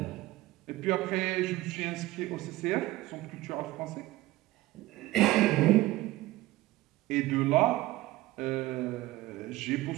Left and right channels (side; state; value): left; quieter; 17.7 dB